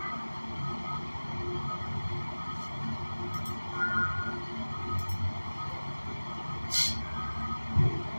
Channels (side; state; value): both; inverted; correlation -1.00